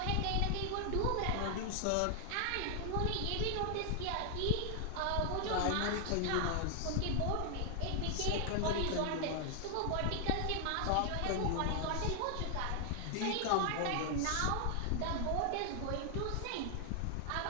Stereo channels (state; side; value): different; both; correlation 0.00